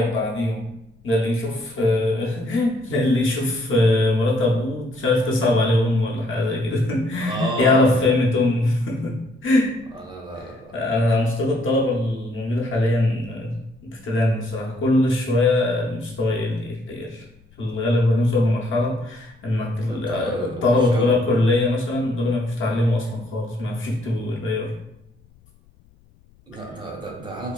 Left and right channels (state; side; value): noise; left; rumble, 30 dB below the sound